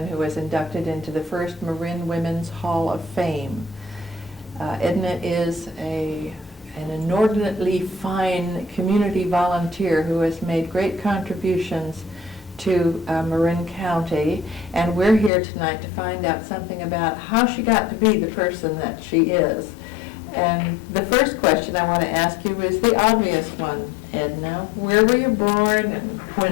who was inducted into the first Marin Women's Hall of Fame. Edna is an inordinately fine community volunteer who has made great contributions to Marin County, and we're here tonight to find out something about how she got to be the person that she is. And the first question I want to ask you is the obvious one, Edna. Where were you born and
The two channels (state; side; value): drops out; right; at 15.3 s